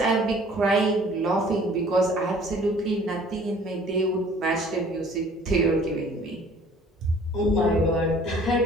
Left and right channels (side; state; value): both; normal; correlation 0.53